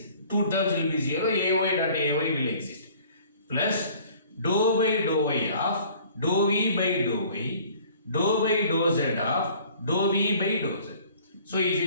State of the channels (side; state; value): both; inverted; correlation -0.52